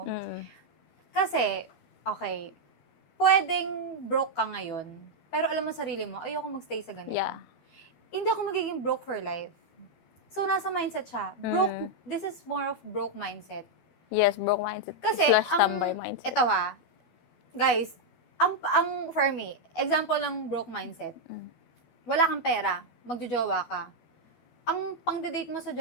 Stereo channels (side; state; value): right; late; 12 ms